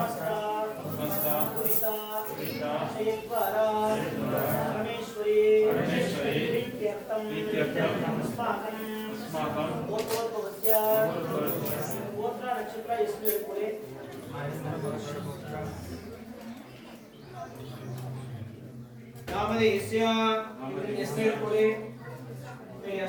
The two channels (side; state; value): both; identical; correlation 1.00